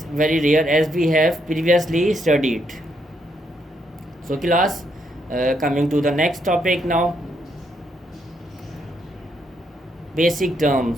very rare as we have previously studied. So class, coming to the next topic now. Basic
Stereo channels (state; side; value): normal; both; correlation 0.76